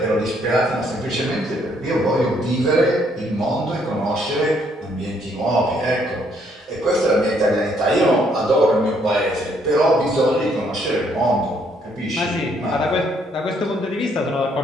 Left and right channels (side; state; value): both; normal; correlation 0.69